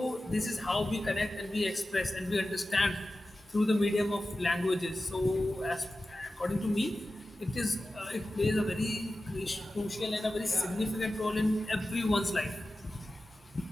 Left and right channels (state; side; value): normal; both; correlation 0.94